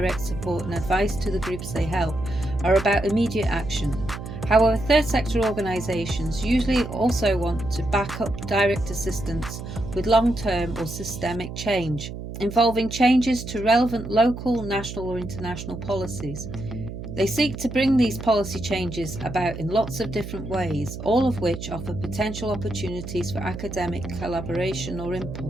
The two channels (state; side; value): noise; right; hum, 9 dB below the sound